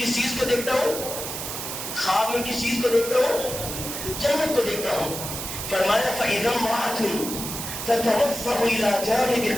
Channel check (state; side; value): noise; right; hiss, 6 dB below the sound